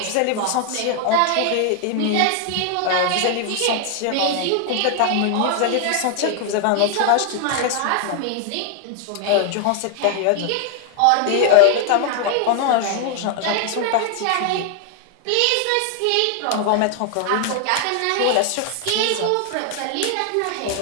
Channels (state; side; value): different; both; correlation 0.00